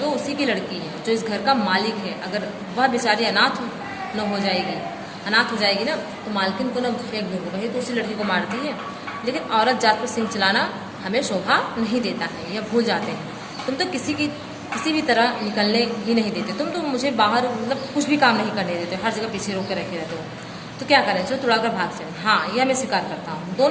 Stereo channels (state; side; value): identical; both; correlation 1.00